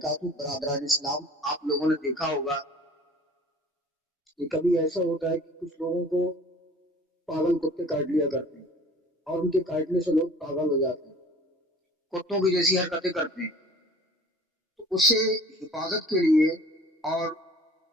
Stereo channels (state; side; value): normal; both; correlation 0.46